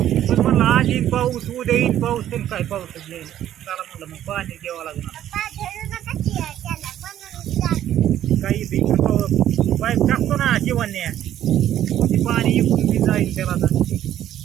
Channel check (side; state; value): left; quieter; 11.7 dB